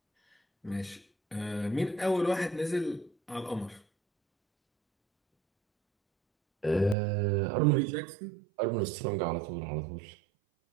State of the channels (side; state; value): left; drops out; at 7.0 s